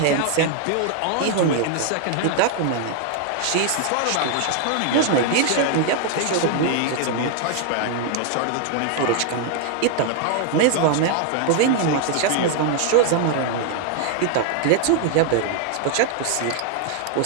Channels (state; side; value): different; both; correlation 0.00